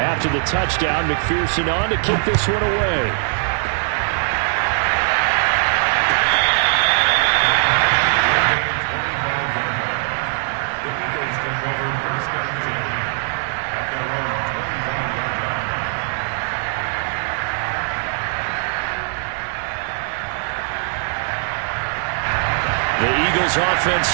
the touchdown, McPherson on to kick this one away. The Eagles offense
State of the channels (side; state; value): left; silent; 62 dB below the other